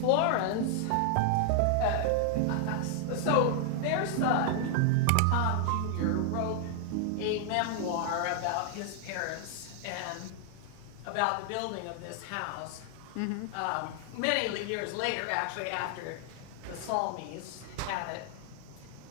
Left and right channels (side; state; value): both; different; correlation 0.00